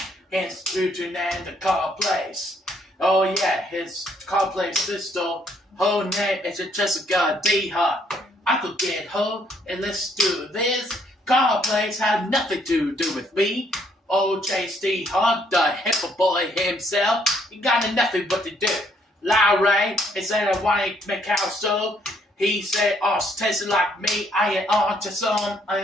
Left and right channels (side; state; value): both; normal; correlation 0.68